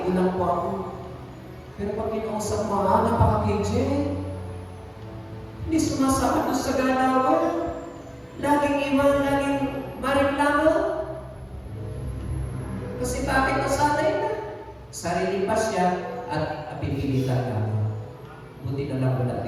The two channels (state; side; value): identical; both; correlation 1.00